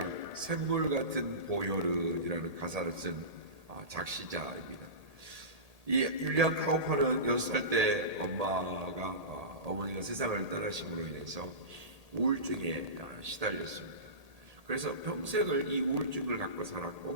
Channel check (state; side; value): late; left; 1.8 ms